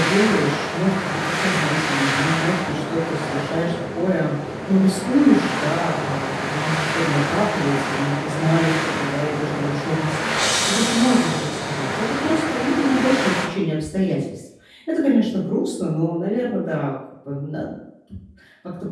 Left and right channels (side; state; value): both; identical; correlation 1.00